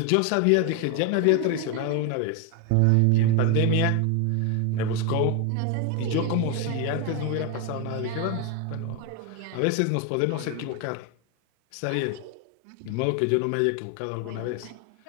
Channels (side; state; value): both; different; correlation 0.01